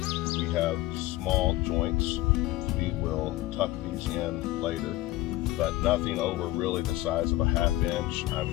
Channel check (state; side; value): quieter; right; 16.9 dB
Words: we have small joints. We will tuck these in later, but nothing over really the size of a 1/2 inch.